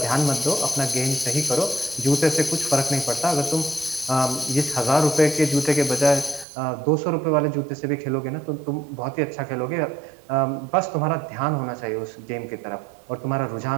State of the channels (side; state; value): left; drops out; at 6.5 s